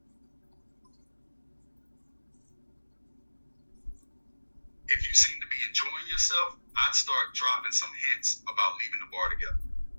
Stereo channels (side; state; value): both; inverted; correlation -1.00